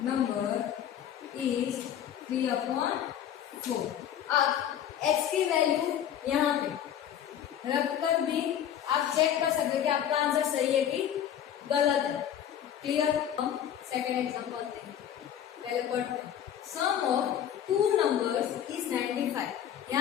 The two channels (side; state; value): right; quieter; 10.0 dB